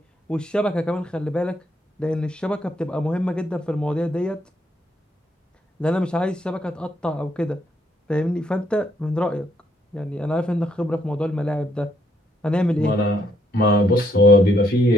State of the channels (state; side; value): normal; both; correlation 0.73